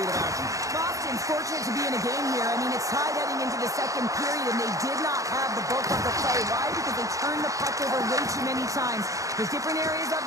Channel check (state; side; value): late; left; 0.16 ms